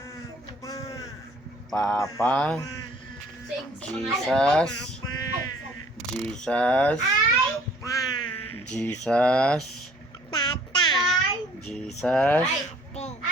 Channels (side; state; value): both; normal; correlation 0.56